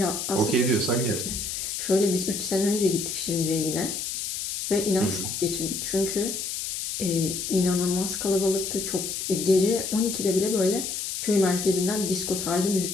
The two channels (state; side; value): noise; left; hiss, 4 dB below the sound